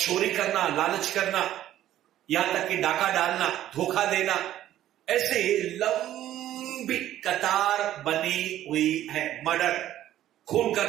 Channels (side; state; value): left; quieter; 12.7 dB